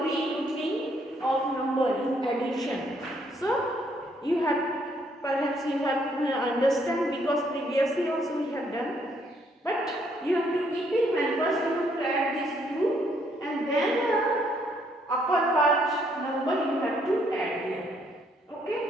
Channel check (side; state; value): both; normal; correlation 0.69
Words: regrouping of number in addition. So you have, perhaps you have understand, because previously also we have done. But you have to keep in mind, first you have to add these two, and then upper part number you have to add here. Okay?